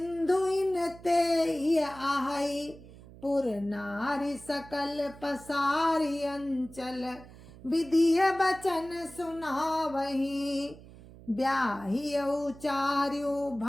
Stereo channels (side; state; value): right; noise; hum, 19 dB below the sound